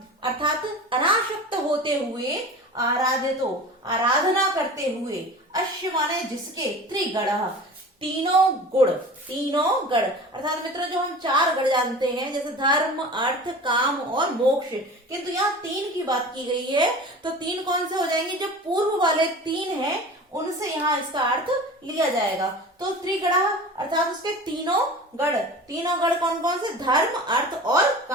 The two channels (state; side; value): normal; both; correlation 0.37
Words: अर्थात अनासक्त होते हुए, आराधितो, आराधना करते हुए, अश्य माने जिसके, त्रिगण, तीनों गुण, तीनों गण, अर्थात मित्रों जो हम 4 गण जानते हैं, जैसे धर्म, अर्थ, काम और मोक्ष, किंतु यहाँ 3 की बात की गई है, तो 3 कौन से हो जाएंगे? जो पूर्व वाले 3 हैं उनसे यहाँ इसका अर्थ लिया जाएगा। तो त्रिगण अर्थात उसके तीनों गण कौन कौन से? धर्म, अर्थ और